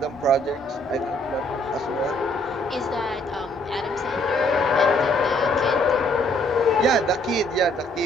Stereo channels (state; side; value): normal; both; correlation 0.65